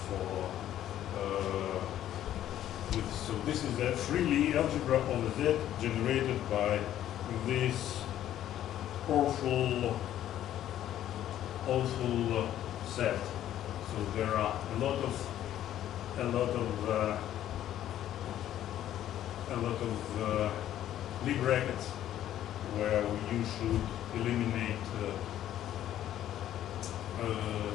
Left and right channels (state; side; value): quieter; right; 11.9 dB